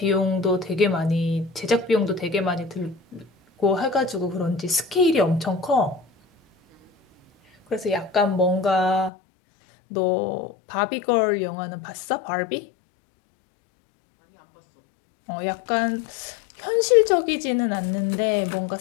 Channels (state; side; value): drops out; right; at 9.1 s